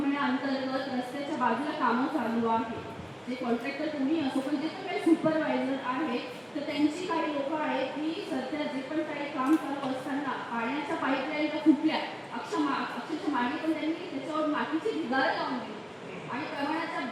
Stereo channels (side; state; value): both; identical; correlation 1.00